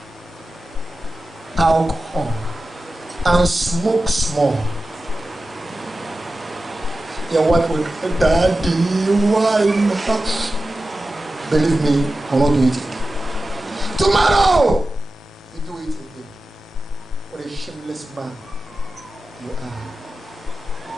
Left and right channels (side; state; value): both; normal; correlation 0.93